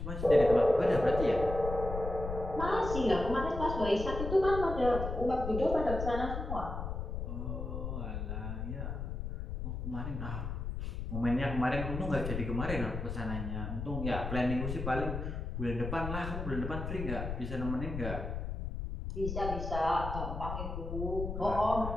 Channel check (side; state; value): left; noise; rumble, 5 dB below the sound